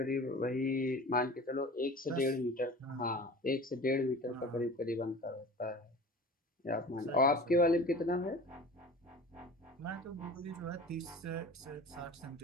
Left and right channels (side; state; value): both; normal; correlation 0.39